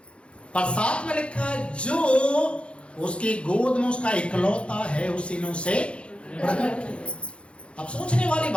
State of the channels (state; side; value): late; right; 0.059 ms